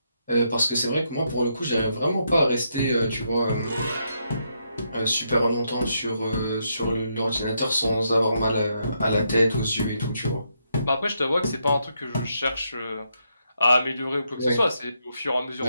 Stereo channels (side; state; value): both; inverted; correlation -0.79